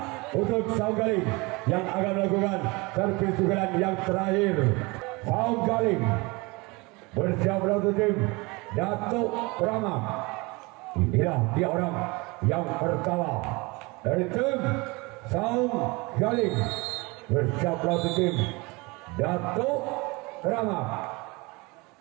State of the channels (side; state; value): left; quieter; 25.5 dB